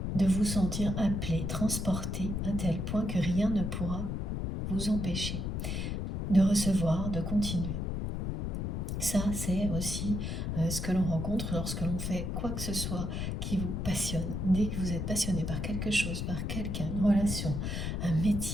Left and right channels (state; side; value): noise; left; rumble, 2 dB below the sound